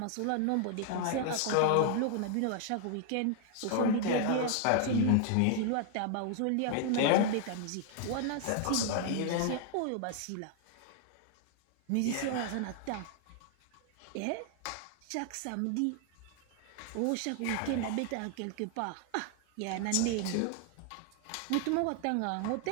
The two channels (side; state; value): both; different; correlation 0.00